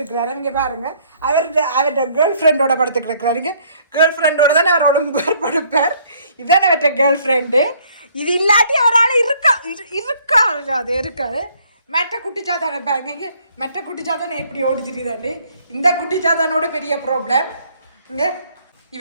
இங்கே பாருங்க, அவர்கிட்ட கேர்ள் ஃப்ரெண்டோட படுத்துட்டு இருக்கிறாருங்க. கேர்ள் ஃப்ரெண்டோட தானே அவர் ஒலிம்பார் படுப்பார். இதுதானே அவர்கிட்ட கேர்ள் ஃப்ரெண்டு. இது இல்லாட்டி அவரால் இருக்கா அது இருக்காது. மெட்ட குட்டிச்சாத்தானே பாருங்க, இங்கே மெட்ட குட்டிச்சாத்தானே எப்படி ஓடி தெரியுதாண்டு. இந்த குட்டிச்சாத்தானோட பெரிய ப்ராப்ளம் இங்கே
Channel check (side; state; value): both; inverted; correlation -0.63